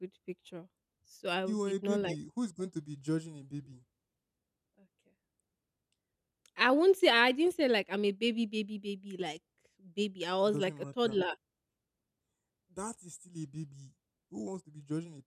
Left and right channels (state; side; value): identical; both; correlation 1.00